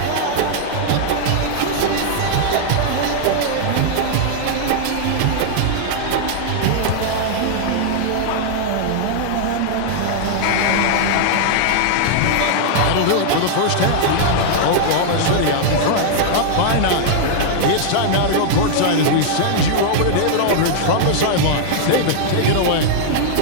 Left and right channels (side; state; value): both; different; correlation -0.01